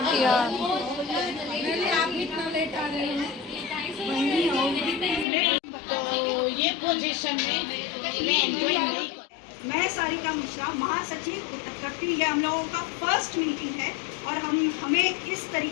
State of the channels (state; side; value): drops out; right; at 5.2 s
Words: तो ये पोजीशन में मैं एंजॉय नहीं। मैं सारिका मिश्रा, महासचिव उत्तरकट्टी। ये हम लोगों का फर्स्ट मीटिंग है, और हमें इस